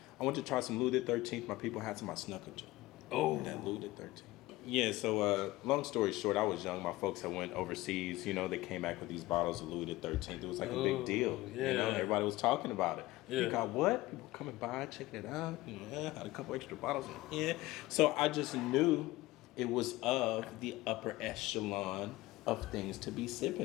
I went to try some Louis the 13th. My people had some. I snuck into. Oh. That Louis the 13th. Yeah, so long story short, I was young. My folks had went overseas. You know, they came back with these bottles of Louis XIII. It was like a big deal. Yeah. You know, everybody was talking about it. Yeah. You got what? People coming by, checking it out. Yeah, had a couple extra bottles in here. So I just knew it was of the upper echelon of things to be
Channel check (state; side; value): quieter; right; 18.6 dB